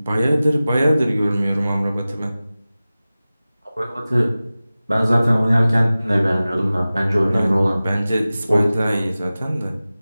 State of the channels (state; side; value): inverted; both; correlation -0.97